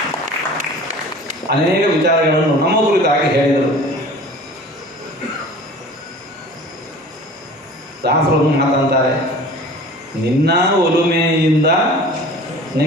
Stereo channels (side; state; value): both; normal; correlation 0.43